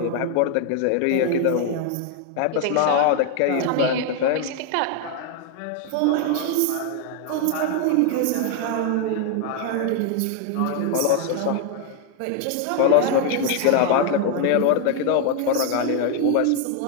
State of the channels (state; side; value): different; both; correlation 0.00